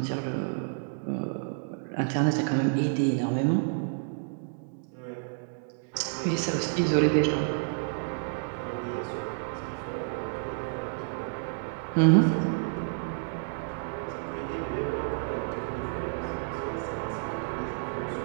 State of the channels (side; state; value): left; silent; digital silence